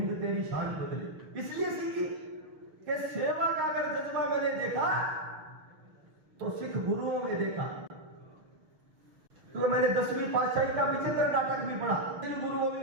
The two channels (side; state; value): left; late; 6.4 ms